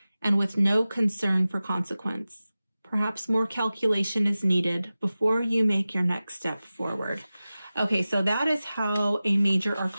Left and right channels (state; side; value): inverted; both; correlation -0.96